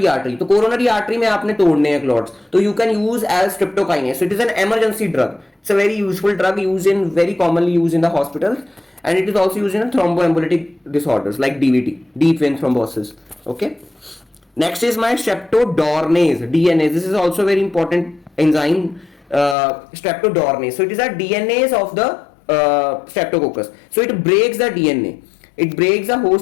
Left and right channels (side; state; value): right; drops out; at 19.6 s